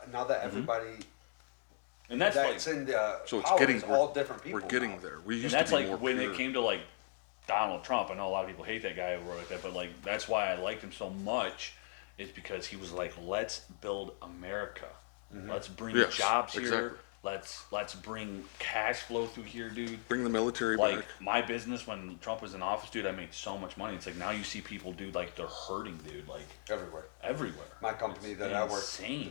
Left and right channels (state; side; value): silent; right; digital silence